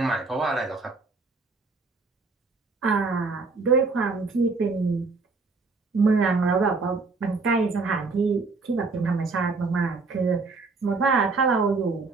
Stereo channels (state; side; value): quieter; left; 4.0 dB